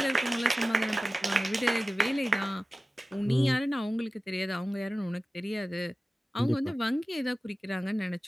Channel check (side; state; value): both; normal; correlation 0.96